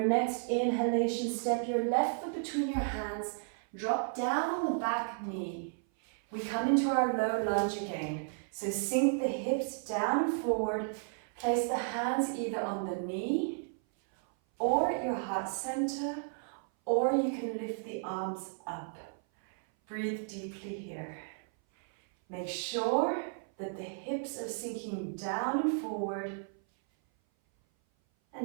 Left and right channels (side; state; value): left; silent; 55 dB below the other